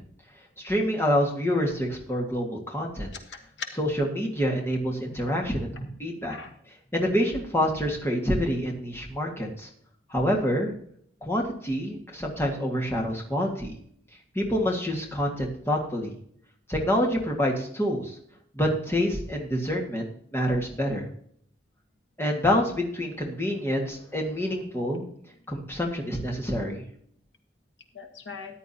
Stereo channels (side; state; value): both; normal; correlation 0.66